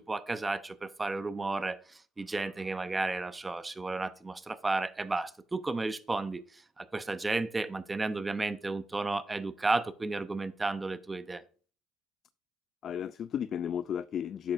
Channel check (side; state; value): both; normal; correlation 0.91